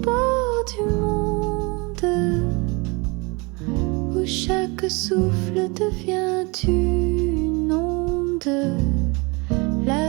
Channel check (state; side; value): quieter; left; 27.6 dB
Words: du monde, où chaque souffle devient une onde.